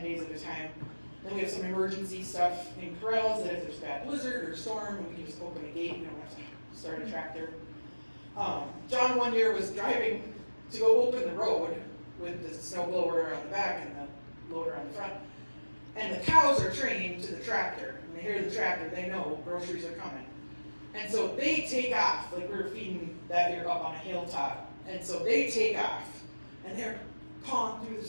days at a time. Then we have some emergency stuff in corrals that if there's bad blizzard or storm, we can just open a gate. We don't have to start a tractor. John one year was driving to go open the road with the snow blower on the back and the loader on the front. And the cows are trained to the tractor. When they hear the tractor, they know groceries are coming. And so they take off, like we were feeding that year up on a hilltop. And so they take off, and they're pawing through the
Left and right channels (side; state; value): both; inverted; correlation -1.00